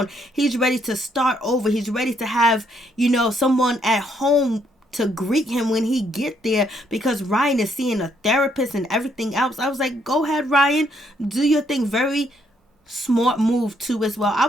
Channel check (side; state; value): both; normal; correlation 0.71